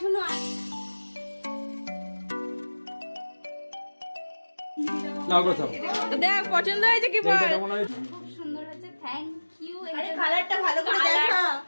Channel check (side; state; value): both; inverted; correlation -1.00